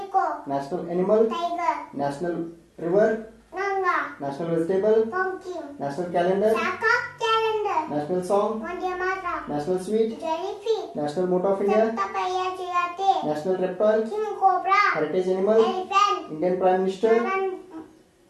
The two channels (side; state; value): both; identical; correlation 1.00